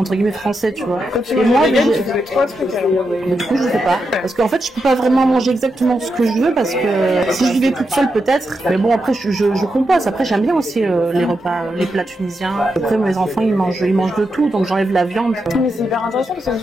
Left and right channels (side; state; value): both; normal; correlation 0.86